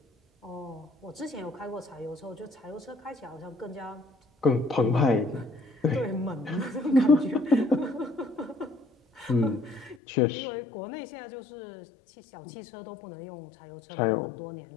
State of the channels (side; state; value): right; drops out; at 10.0 s